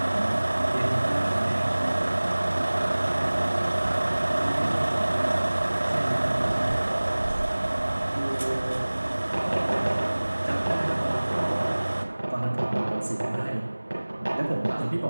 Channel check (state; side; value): inverted; both; correlation -1.00